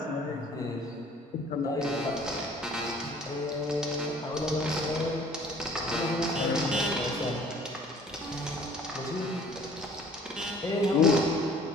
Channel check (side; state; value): both; normal; correlation 0.53